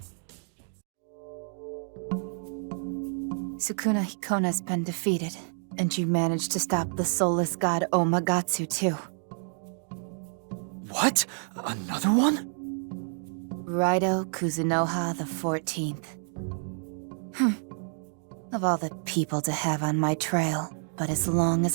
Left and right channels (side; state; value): left; silent; 56 dB below the other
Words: Sukuna Hikona's been defeated, and you managed to stop the soulless god Omagatsu too. What? Another one? Raido Kuzunoha the 14th. Of all the people to have on my trail, but as long